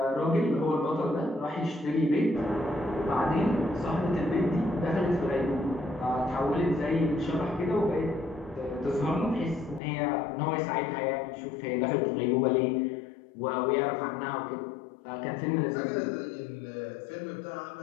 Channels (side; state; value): right; drops out; at 9.8 s